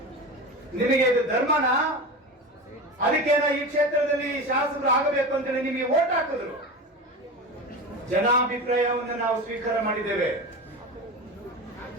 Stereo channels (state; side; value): normal; both; correlation 0.27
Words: ನಿಮಗೆ ಇದು ಧರ್ಮನಾ? ಅದಕ್ಕೇನ ಈ ಕ್ಷೇತ್ರದಲ್ಲಿ ಶಾಸಕರು ಆಗಬೇಕು ಅಂತೇಳಿ ನಿಮಗೆ ವೋಟ್ ಹಾಕಿದ್ರು. ಜನಾಭಿಪ್ರಾಯವನ್ನು ನಾವು ಸ್ವೀಕಾರ ಮಾಡಿದ್ದೇವೆ.